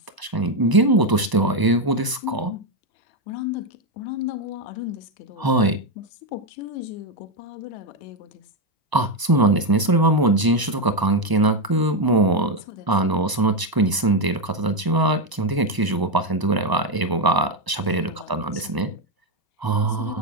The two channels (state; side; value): late; left; 1.0 ms